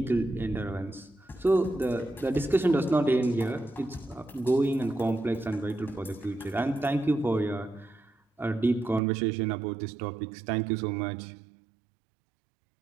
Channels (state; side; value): drops out; left; at 9.0 s